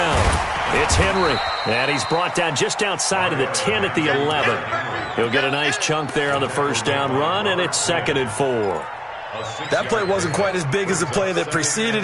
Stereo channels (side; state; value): both; identical; correlation 1.00